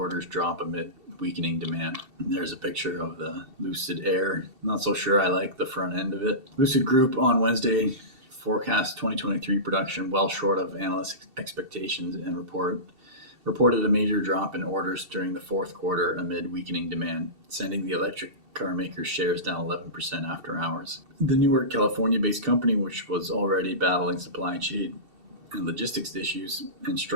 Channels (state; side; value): late; left; 2.7 ms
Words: drop amid weakening demand. And there's a picture of the Lucid Air. Not so sure I like the front end of it. Lucid Group on Wednesday forecast 2023 production well short of analyst expectations and reported a major drop in orders during the fourth quarter amid weakening demand, sending the electric car maker's shares down 11% after hours. The Newark, California-based company, which was already battling supply chain and logistics issues and